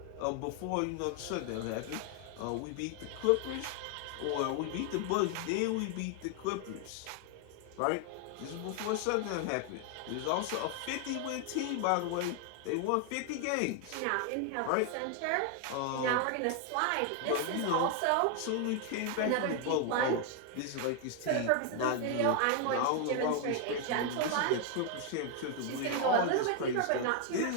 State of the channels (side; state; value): both; different; correlation 0.00